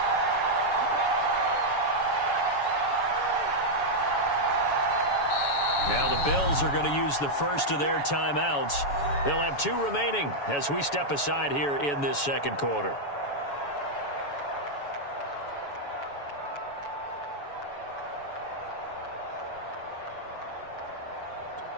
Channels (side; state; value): right; late; 7.1 ms